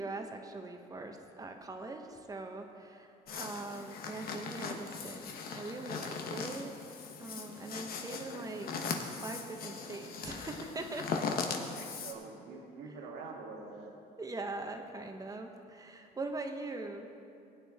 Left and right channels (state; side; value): normal; both; correlation 0.41